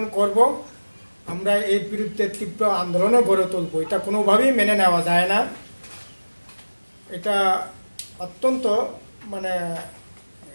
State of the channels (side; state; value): both; inverted; correlation -1.00